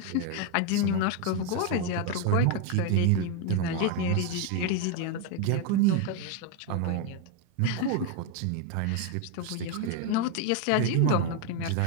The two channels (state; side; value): different; both; correlation 0.01